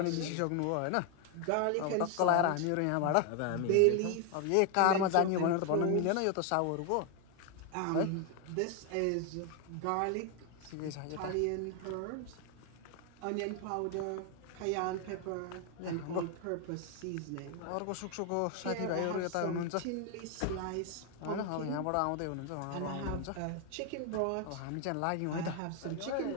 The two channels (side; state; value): both; different; correlation 0.01